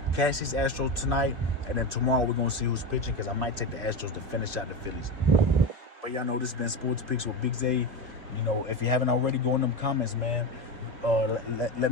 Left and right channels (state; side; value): late; left; 2.4 ms